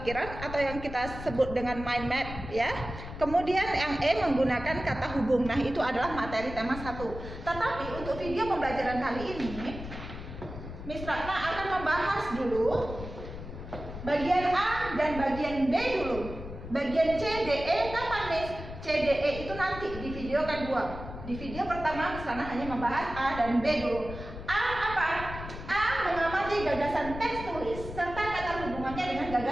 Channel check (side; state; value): left; noise; rumble, 10 dB below the sound